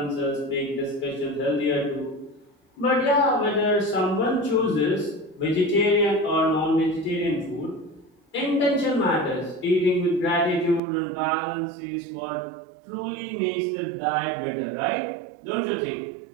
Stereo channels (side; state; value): left; drops out; at 10.8 s